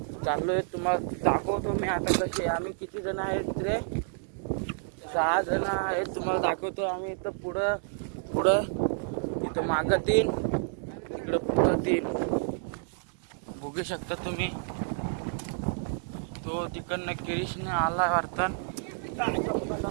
चाललोय, तुम्हाला दाखवतो मी आता कसे. आम्ही किती जण आहेत रे? 6 जण आहेत. तुम्हाला दाखवतो आम्ही. इथं पुढं इथं मागं 3, इकडं पुढं 3 बघू शकता तुम्ही. तो तिकडनं किरीशने आला वाटतं.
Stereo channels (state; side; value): silent; left; digital silence